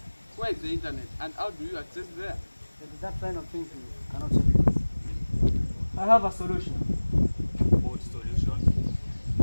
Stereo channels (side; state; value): both; inverted; correlation -1.00